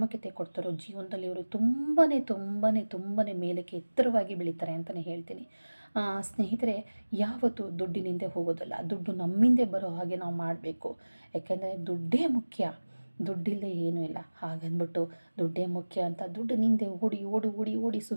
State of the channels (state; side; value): inverted; both; correlation -1.00